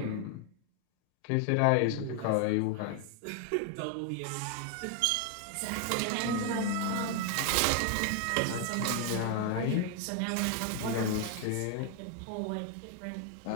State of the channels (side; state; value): both; different; correlation 0.00